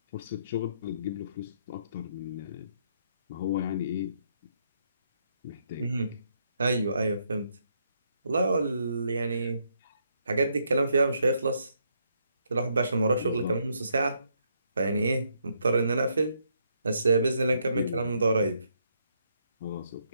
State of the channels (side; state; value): both; inverted; correlation -0.74